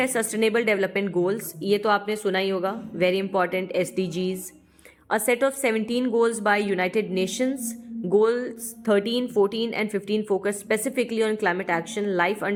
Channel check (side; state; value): both; identical; correlation 1.00